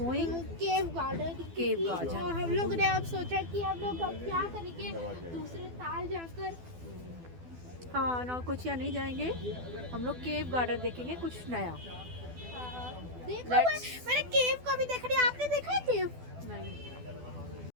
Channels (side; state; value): left; late; 12 ms